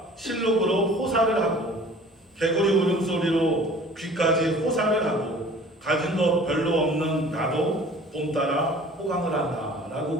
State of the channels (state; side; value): normal; both; correlation 0.47